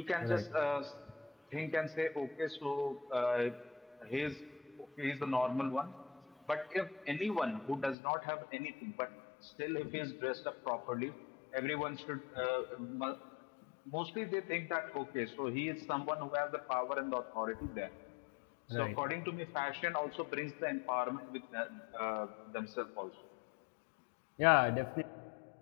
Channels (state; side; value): drops out; right; at 8.0 s